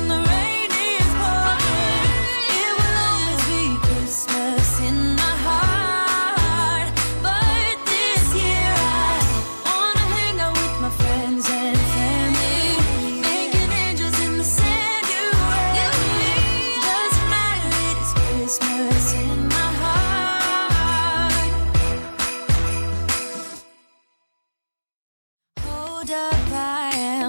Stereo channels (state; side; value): inverted; both; correlation -1.00